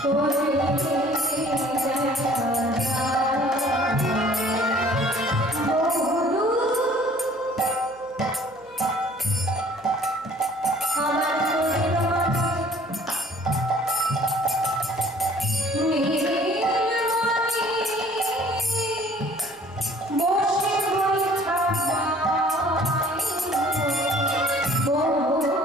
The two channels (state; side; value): noise; right; hum, 30 dB below the sound